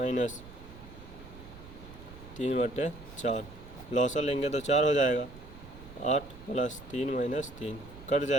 3/4, लॉसा लेंगे तो 4 हो जाएगा। 8 + 3 - 3 कट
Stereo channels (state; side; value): noise; right; rumble, 16 dB below the sound